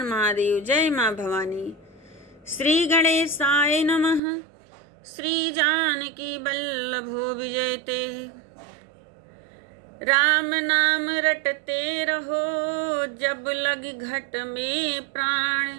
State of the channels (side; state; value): left; drops out; at 4.2 s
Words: महादेव। जय माँ भवानी। श्री गणेशाय नमः। श्री जानकी वल्लभो विजयते। राम नाम रटते रहो, जब लगी घट में